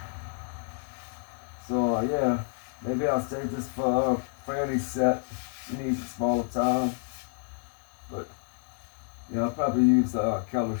So yeah, maybe I'll save this for Franny's set. She needs a smaller time. But yeah, I'll probably use the Keller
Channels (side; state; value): right; silent; digital silence